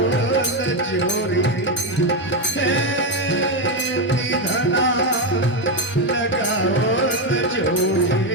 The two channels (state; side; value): normal; both; correlation 0.07